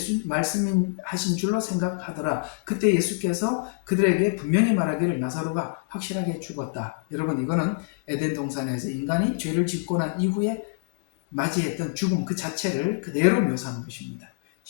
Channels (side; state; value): right; silent; digital silence